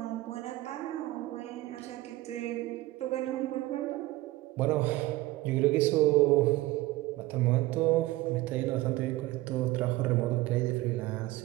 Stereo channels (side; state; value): left; quieter; 18.4 dB